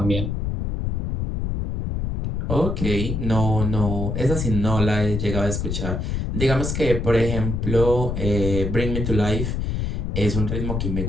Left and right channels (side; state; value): left; noise; rumble, 2 dB below the sound